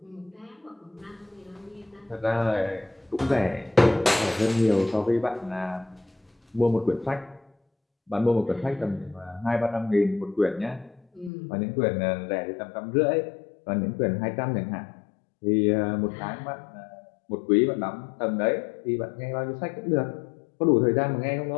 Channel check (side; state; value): right; drops out; at 11.3 s